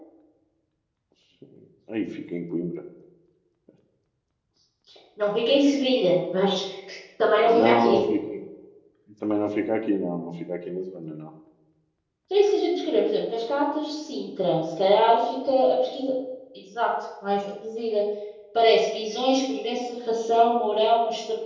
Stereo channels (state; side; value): identical; both; correlation 1.00